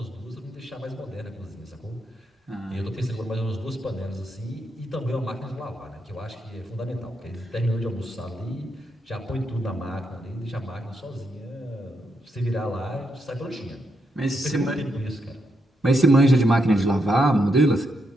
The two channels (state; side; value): normal; both; correlation 0.81